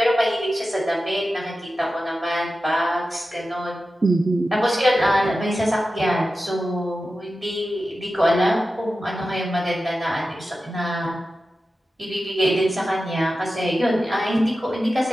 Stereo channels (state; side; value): normal; both; correlation 0.93